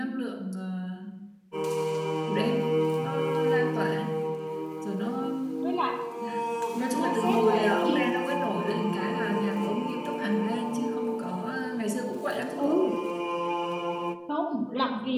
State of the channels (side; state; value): both; identical; correlation 1.00